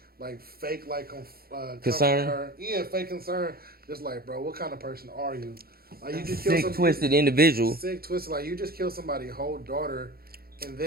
like fake like concern. Her. Yeah, fake concern. Just like, bro, what kind of person are you? Like you just sick, twisted individual. Sick, twisted. Like you just killed somebody's whole daughter, and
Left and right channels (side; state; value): left; late; 0.44 ms